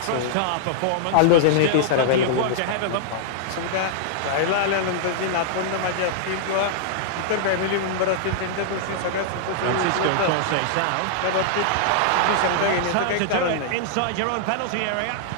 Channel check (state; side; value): different; both; correlation -0.01